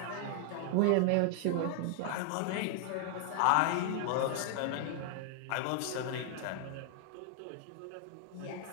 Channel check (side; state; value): both; different; correlation 0.00